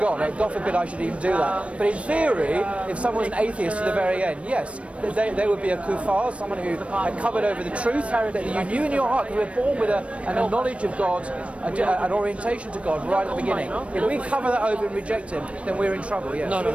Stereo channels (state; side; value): late; left; 0.062 ms